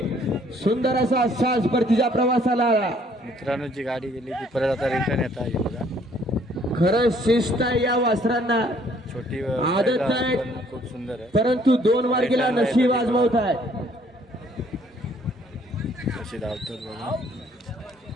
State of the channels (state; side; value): normal; both; correlation 0.62